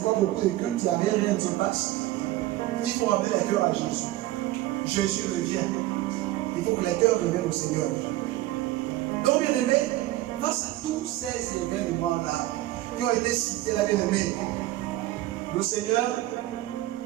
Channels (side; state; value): left; quieter; 16.3 dB